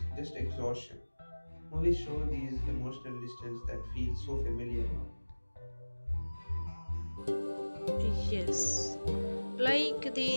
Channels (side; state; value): both; inverted; correlation -1.00